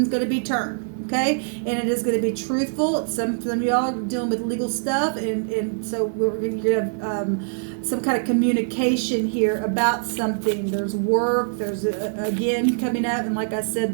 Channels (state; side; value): silent; left; digital silence